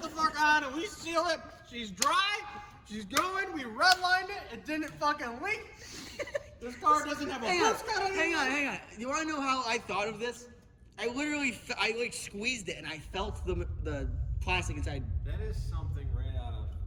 the fuck on and we seal it. She's dry. She's going. We redlined it. It didn't fucking leak. This car doesn't have a boost cut on it. Hang on. You want to know how I thought of this? I literally, I like squeezed it and I felt the plastic inside. That is something right out of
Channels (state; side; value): identical; both; correlation 1.00